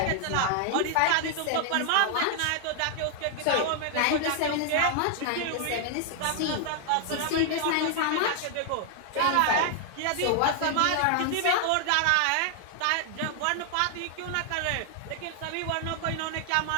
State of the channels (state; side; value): different; both; correlation 0.00